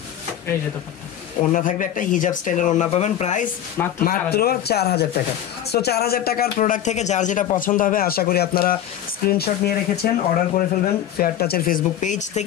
ওড়না থাকবে একটা হিজাব স্টাইলের ওড়না পাবেন, প্রাইস মাত্র 4000 টাকা। সো 4000 টাকার প্রোডাক্ট থেকে যার যেটা পছন্দ হবে আশা করি আপনারা স্ক্রিনশট নিয়ে রেখেছেন, অর্ডার করে ফেলবেন ফেয়ার টাচের ফেসবুক পেজ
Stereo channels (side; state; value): right; quieter; 10.8 dB